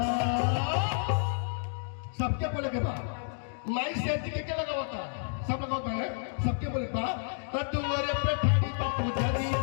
सबके बोले के बा माई से के लगा होता सब लगा होता है सबके बोले बा दुआर पे ठाड़ी बापू जदिया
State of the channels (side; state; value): right; silent; digital silence